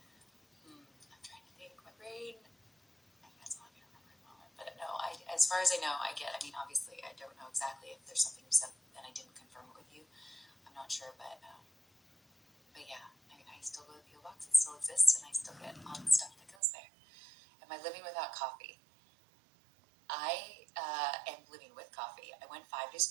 I'm trying to think. My brain, that's all I can remember at the moment. But no, as far as I know, obviously, I don't know exactly if there's something you said and I didn't confirm it with you. I'm not sure, but yeah, I still go to the P.O. Box. It still exists, and I still get all the stuff that goes there. Am I living without coffee? I am living with coffee. I went 5 days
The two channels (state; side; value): drops out; left; at 16.6 s